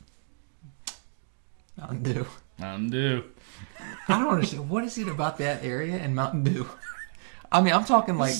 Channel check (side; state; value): left; silent; 59 dB below the other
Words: Mountain Dew. Mountain Dew. I don't understand. What is it about that area and Mountain Dew? I mean, I'm talking like...